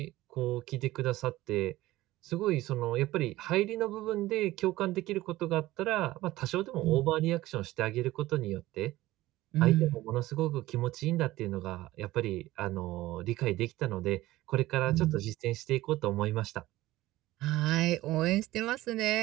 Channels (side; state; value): left; quieter; 17.0 dB